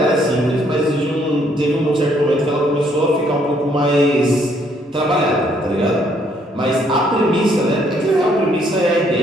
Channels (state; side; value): normal; both; correlation 0.68